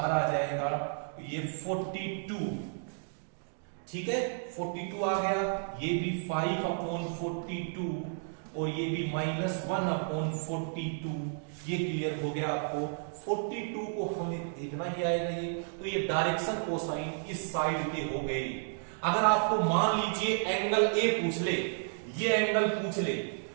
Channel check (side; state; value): left; silent; digital silence